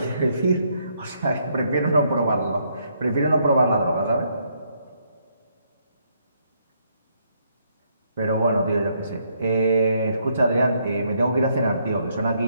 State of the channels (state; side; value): inverted; both; correlation -0.73